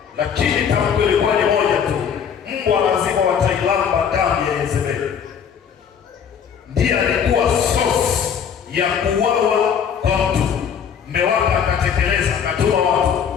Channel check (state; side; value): quieter; right; 7.6 dB